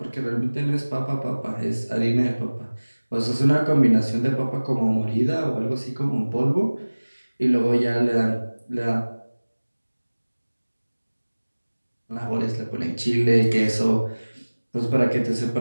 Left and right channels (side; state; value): both; inverted; correlation -1.00